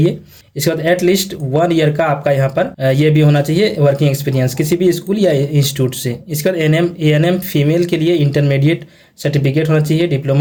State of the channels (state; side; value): identical; both; correlation 1.00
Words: इसके बाद एटलीस्ट 1 ईयर का आपका यहाँ पर ये भी होना चाहिए वर्किंग एक्सपीरियंस किसी भी स्कूल या इंस्टीट्यूट से। इसके बाद ANM फीमेल के लिए इंटरमीडिएट सर्टिफिकेट होना चाहिए,